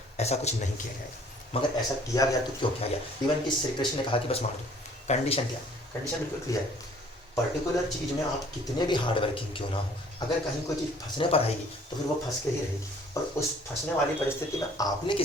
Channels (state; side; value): normal; both; correlation 0.55